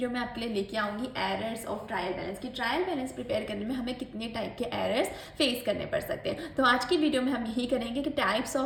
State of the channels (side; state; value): both; identical; correlation 1.00